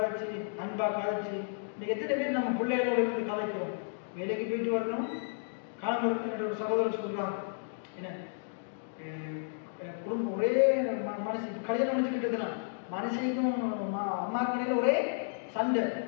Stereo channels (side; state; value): right; silent; digital silence